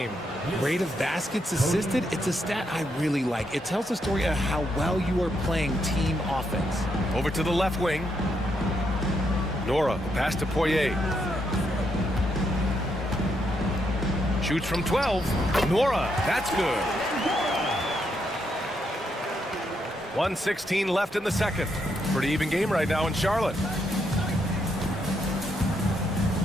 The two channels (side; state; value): both; normal; correlation 0.78